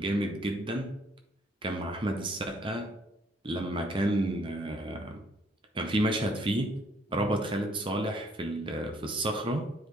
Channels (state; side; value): normal; both; correlation 0.65